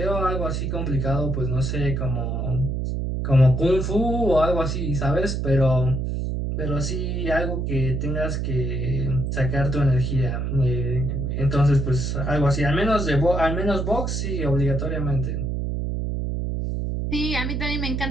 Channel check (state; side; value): noise; right; hum, 1 dB below the sound